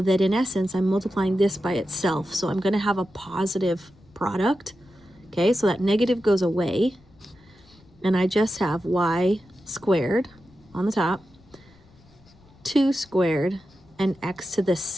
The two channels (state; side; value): noise; left; rumble, 28 dB below the sound